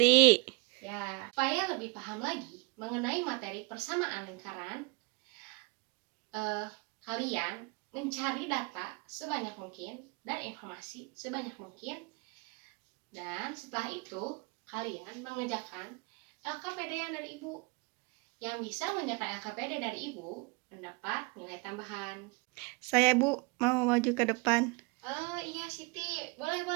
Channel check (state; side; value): quieter; left; 29.2 dB